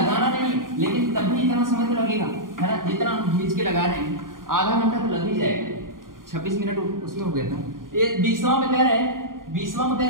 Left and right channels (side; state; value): left; late; 0.90 ms